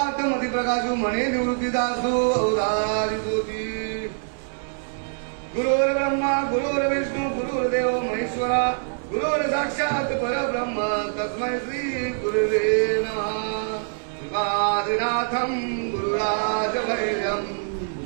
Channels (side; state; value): left; silent; digital silence